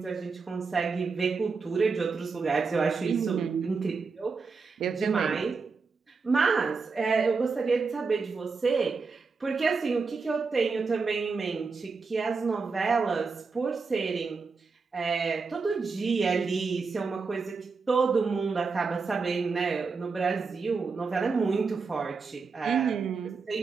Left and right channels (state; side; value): quieter; left; 4.7 dB